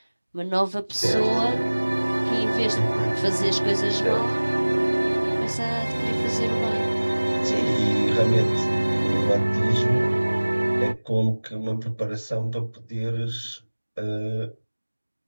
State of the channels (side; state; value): both; inverted; correlation -1.00